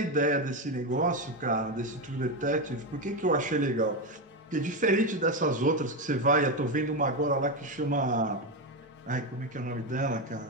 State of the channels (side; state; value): both; normal; correlation 0.11